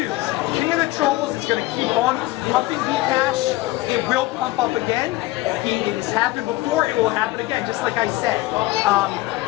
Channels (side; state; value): right; quieter; 18.6 dB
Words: King of the Trolls is going to keep on pumping Bcash. It will pump up again. It has happened before. It will happen again, just like I said.